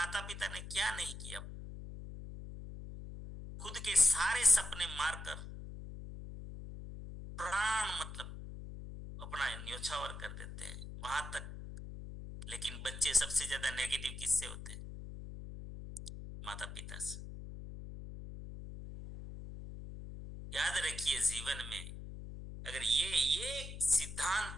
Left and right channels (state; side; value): noise; left; hum, 10 dB below the sound